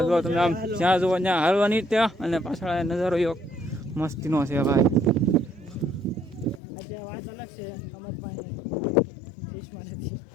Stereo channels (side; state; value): right; drops out; at 6.6 s